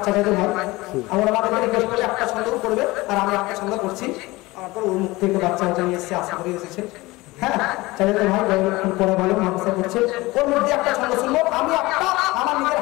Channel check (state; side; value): quieter; right; 20.9 dB